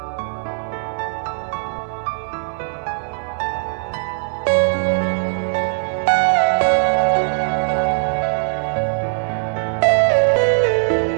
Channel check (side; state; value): left; silent; 57 dB below the other